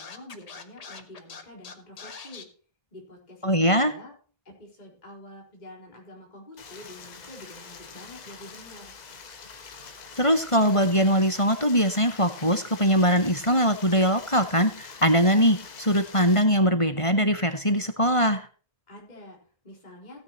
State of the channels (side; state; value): right; late; 1.5 ms